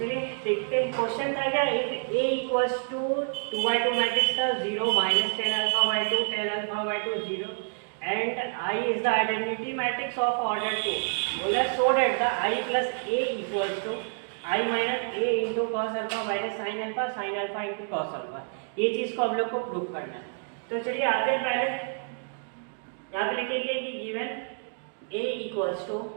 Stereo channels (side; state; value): left; silent; 59 dB below the other